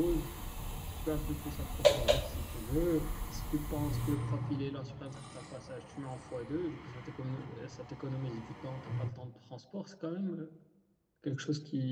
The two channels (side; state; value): both; identical; correlation 1.00